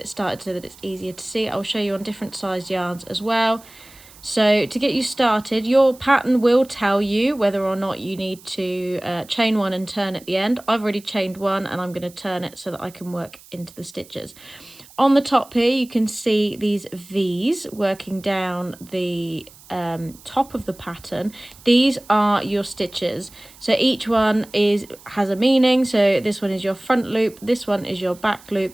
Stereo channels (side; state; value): right; noise; hiss, 23 dB below the sound